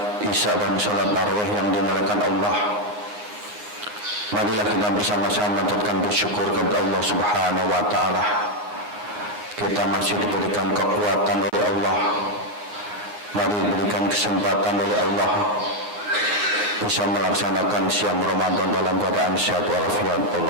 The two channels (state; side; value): late; left; 9.5 ms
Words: Isya dan salat tarawih yang dimuliakan Allah, marilah kita bersama-sama mengucapkan bersyukur kepada Allah Subhanahu wa taala. Kita masih diberikan kekuatan oleh Allah. Mari diberikan kesempatan oleh Allah bisa melaksanakan siam Ramadan dalam keadaan sehat walafiat.